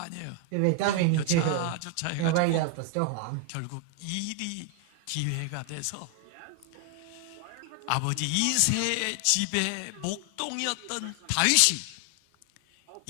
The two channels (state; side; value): different; both; correlation 0.00